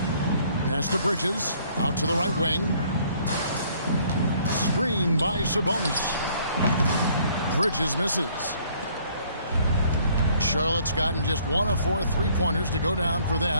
Pass to Bridges. Out to the right wing. Screen by Sabonis. Bridges misses. Charlotte's gotten just 1 of 4 3-pointers to go down for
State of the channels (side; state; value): both; inverted; correlation -0.61